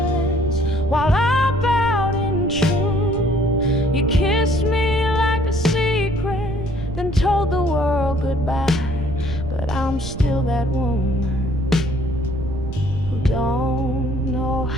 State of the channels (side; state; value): right; noise; rumble, 8 dB below the sound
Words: while I bowed in truth. You kissed me like a secret, then told the world goodbye. But I'm still that woman who don't know